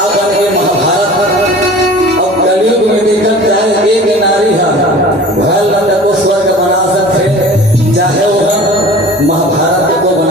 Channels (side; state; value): both; normal; correlation 0.42